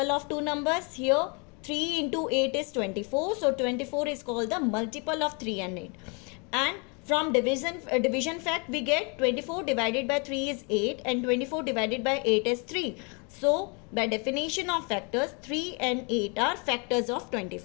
of two numbers. Here 3 into 8 is 24, so 24 is called the multiple of 3 and 8. And from division fact we get 24 divided by 3 is 8 and 24 divided by 8 is 3. So by definition of factors, 3 and 8 are factors of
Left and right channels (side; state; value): right; quieter; 33.5 dB